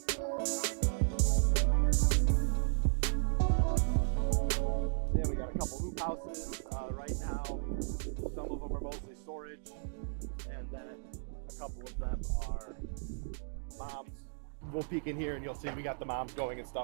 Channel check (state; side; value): silent; left; digital silence